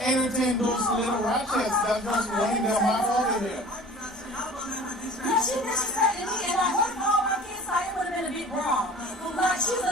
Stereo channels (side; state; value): both; normal; correlation 0.43